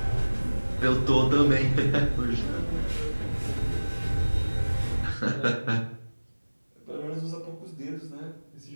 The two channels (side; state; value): both; inverted; correlation -1.00